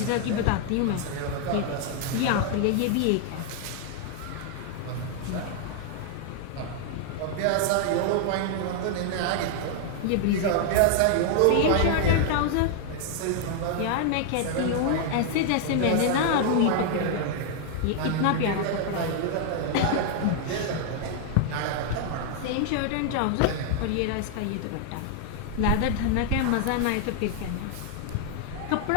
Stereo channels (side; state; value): both; different; correlation 0.00